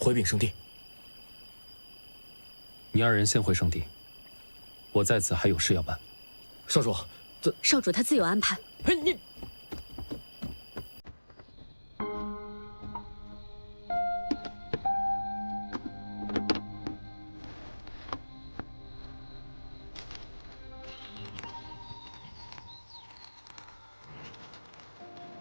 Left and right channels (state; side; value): inverted; both; correlation -1.00